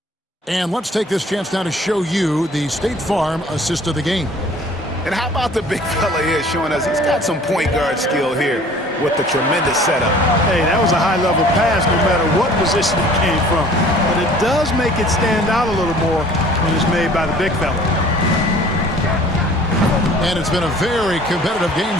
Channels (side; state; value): both; normal; correlation 0.51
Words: And let's take this chance now to show you the State Farm assist of the game. And how about the big fella here showing us he's got some point guard skill here with the tremendous setup. Hey, that was a high-level pass no matter what position it came from. But it does make it stand out a little more when it's made by the big fella. And it's been a very competitive game